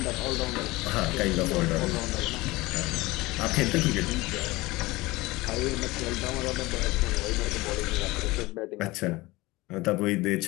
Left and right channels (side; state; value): right; quieter; 20.8 dB